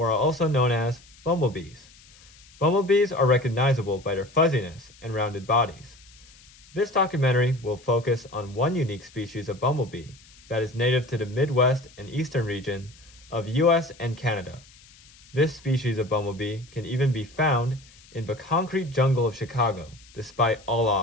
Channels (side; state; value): left; noise; hiss, 25 dB below the sound